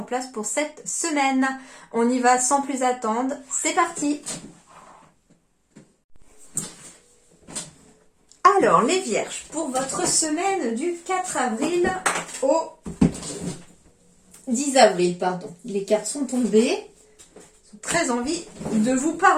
place pour cette semaine. On y va sans plus attendre. C'est parti! Alors, les Vierges, pour votre semaine du 4 avril au 10 avril, pardon. Les cartes sont tombées. J'ai très envie de vous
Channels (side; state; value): both; identical; correlation 1.00